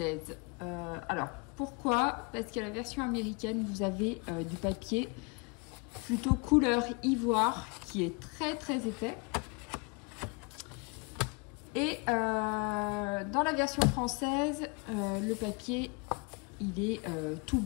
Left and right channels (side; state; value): right; quieter; 30.8 dB